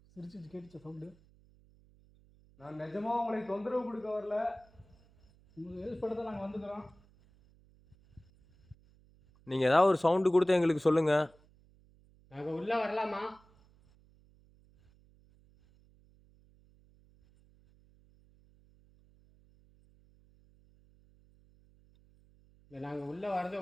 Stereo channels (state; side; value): noise; right; hum, 29 dB below the sound